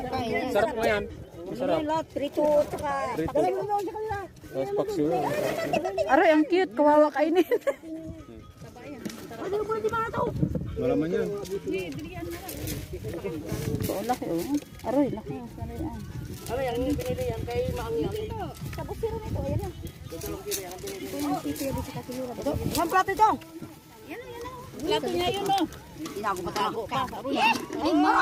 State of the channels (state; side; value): identical; both; correlation 1.00